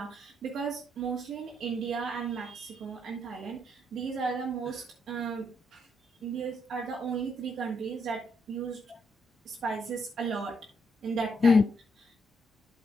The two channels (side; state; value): both; normal; correlation 0.75